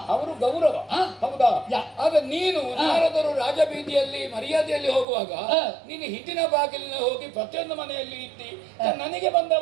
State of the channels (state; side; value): drops out; left; at 5.1 s